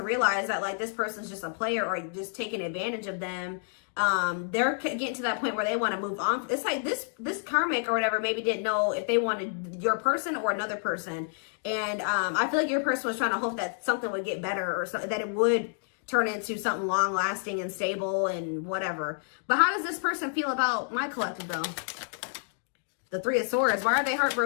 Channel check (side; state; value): right; silent; 59 dB below the other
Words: realize that like this person's just a player or just taking advantage of them. They're getting to that point where they want to move on. It's like this karmic or whatever maybe didn't know if they wanted your person or another person. And I feel like your person was trying to hope that something would get better or something, that it would turn into something long lasting and stable and whatever. But how does this person feel about my collective though? The Three of Swords. Why are they